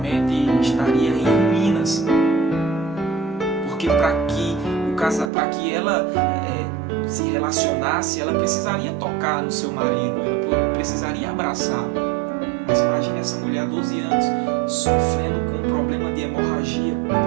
estaria em ruínas. Porque para que ela se relacionasse, ela precisaria tocar no seu marido, ela precisaria abraçar. Mas imagine essa mulher há 12 anos sofrendo com um problema de hemorragia,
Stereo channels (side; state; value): left; drops out; at 5.3 s